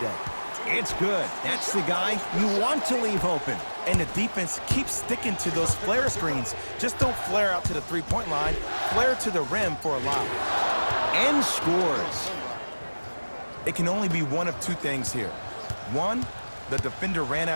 It's good. That's the guy you want to leave open. And the defense keeps sticking to those flare screens. Just don't flare out to the three-point line. Flare to the rim for a lob. And scores. It can only be one of two things here. One, the defender ran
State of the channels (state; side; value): inverted; both; correlation -1.00